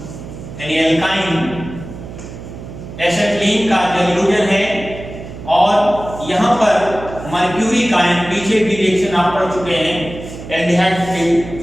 यानी एल्काइन एसिटिलीन का जैल्यूजन है और यहाँ पर मर्क्यूरिक आयन, पीछे भी रिएक्शन आप पढ़ चुके हैं एल्डिहाइड के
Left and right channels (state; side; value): noise; right; hum, 12 dB below the sound